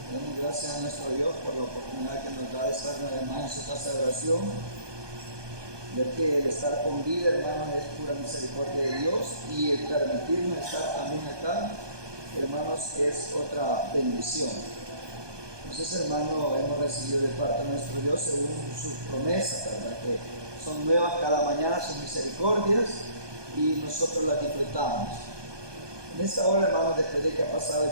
Damos gracias a nuestro Dios por la oportunidad que nos da de estar además en su casa de oración, ya que el estar con vida, hermanos, es pura misericordia de Dios, y el permitirnos estar también acá, hermanos, es otra bendición. Entonces, hermanos, hemos recibido de parte de nuestro Dios según sus promesas, ¿verdad? Que son nuevas cada mañana, sus misericordias, y nosotros las disfrutamos. En esta hora, hermanos, después de que ha pasado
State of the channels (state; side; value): late; left; 1.2 ms